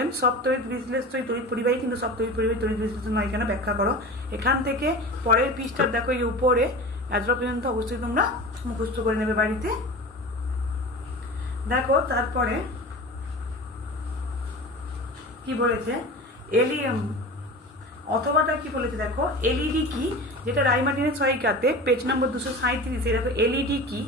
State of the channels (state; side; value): normal; both; correlation 0.33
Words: সব তড়িৎ বিশ্লেষ্যই তড়িৎ পরিবাহী কিন্তু সব তড়িৎ পরিবাহী তড়িৎ বিশ্লেষ্য নয় কেন, ব্যাখ্যা করো। এখান থেকে পরের পৃষ্ঠার দেখো এই উপরে এতটা পর্যন্ত অবশ্যই তোমরা মুখস্থ করে নেবে বাড়িতে। দেখো তারপরে কি বলেছে, অথবাটা কি বলেছে দেখো, এলইডি কি, যেটা রায় মার্টিনের সহায়িকাতে পেজ নম্বর 237-এ দেখো এলইডি কি